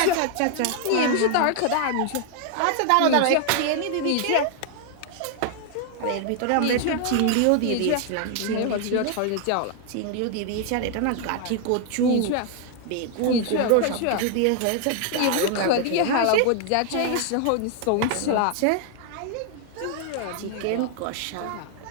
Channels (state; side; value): different; both; correlation 0.00